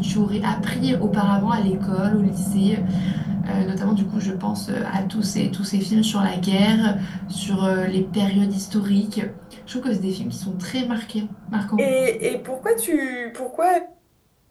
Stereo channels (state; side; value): identical; both; correlation 1.00